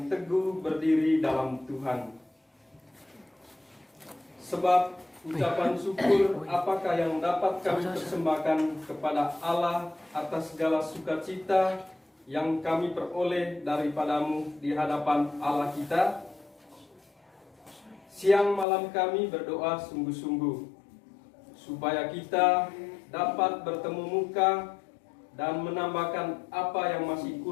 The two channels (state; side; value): drops out; right; at 18.7 s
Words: teguh berdiri dalam Tuhan. Sebab ucapan syukur apakah yang dapat kami persembahkan kepada Allah atas segala sukacita yang kami peroleh daripadamu di hadapan Allah kita? Siang malam kami berdoa sungguh-sungguh, supaya kita dapat bertemu muka dan menambahkan apa yang masih